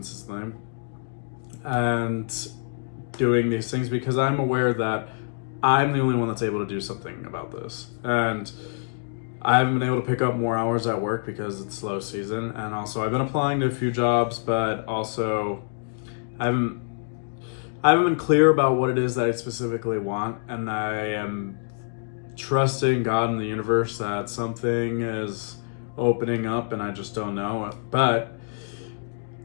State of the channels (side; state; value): right; silent; digital silence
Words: and doing these things because I'm aware that I'm the only one that's able to do something about this. And I haven't been able to pick up more hours at work because it's slow season, and also I've been applying to a few jobs, but also I haven't been clear about what it is that I specifically want, and I am trusting God and the universe that something is opening up, and I just don't know it. But